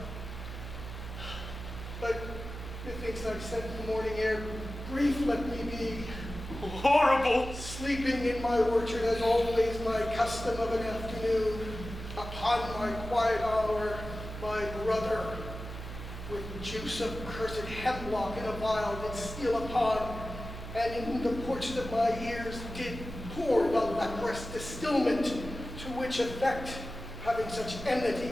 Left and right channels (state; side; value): noise; right; hum, 9 dB below the sound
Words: But methinks I've sent the morning air, grief let me be. Horrible! Sleeping in my orchard as always my custom of an afternoon, upon my quiet hour, my brother, with juice of cursed hemlock in a vial did steal upon, and in the porches of my ears did pour the leprous distilment, to which effect, having such enmity